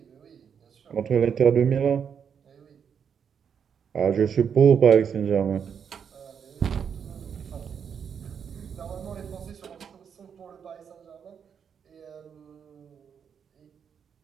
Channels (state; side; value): quieter; left; 7.4 dB